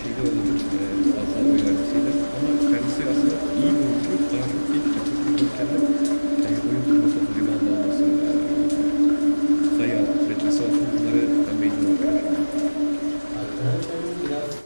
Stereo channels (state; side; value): inverted; both; correlation -1.00